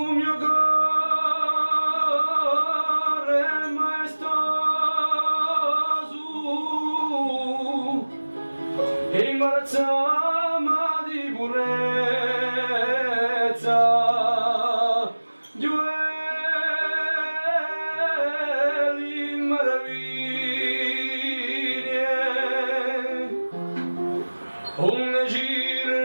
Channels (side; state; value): both; inverted; correlation -1.00